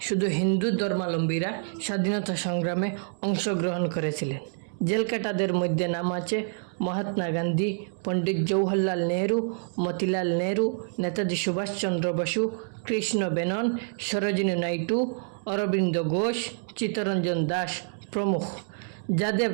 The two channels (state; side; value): silent; left; 60 dB below the other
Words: শুধু হিন্দু ধর্মাবলম্বীরা স্বাধীনতা সংগ্রামে অংশগ্রহণ করেছিলেন। জেলকাটাদের মধ্যে নাম আছে মহাত্মা গান্ধী, পণ্ডিত জওহরলাল নেহরু, মতিলাল নেহরু, নেতাজি সুভাষচন্দ্র বসু, কৃষ্ণ মেনন, সরোজিনী নাইডু, অরবিন্দ ঘোষ, চিত্তরঞ্জন দাস প্রমুখ। যাদের